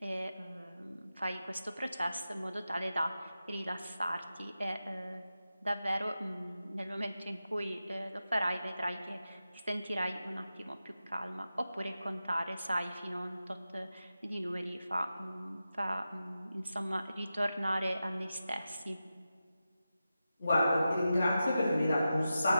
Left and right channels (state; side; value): inverted; both; correlation -0.91